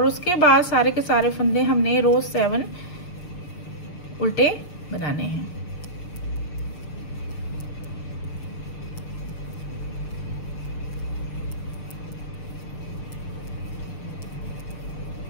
उसके बाद सारे के सारे फंदे हमने रो 7 उल्टे बनाने हैं।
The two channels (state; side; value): late; right; 6.7 ms